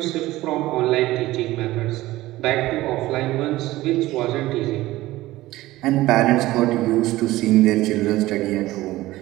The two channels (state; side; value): quieter; left; 17.3 dB